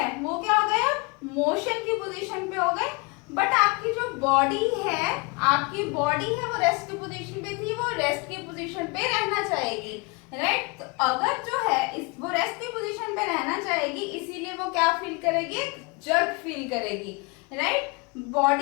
वो क्या हो गए, मोशन की पोजीशन पे हो गए, बट आपकी जो बॉडी है, वो रेस्ट की पोजीशन पे थी, वो रेस्ट की पोजीशन पे रहना चाहेगी, राइट. तो अगर जो है वो रेस्ट की पोजीशन पे रहना चाहेगी, इसीलिए वो क्या फील करेगी, जर्क फील करेगी, right.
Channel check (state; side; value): quieter; right; 29.2 dB